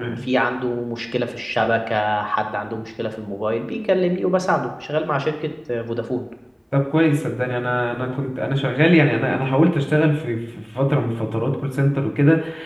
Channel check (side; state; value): both; identical; correlation 1.00